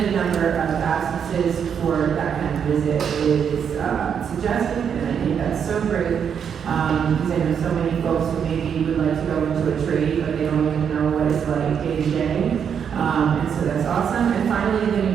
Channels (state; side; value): quieter; left; 7.6 dB